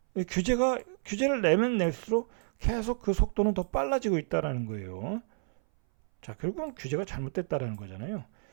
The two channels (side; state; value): left; silent; 58 dB below the other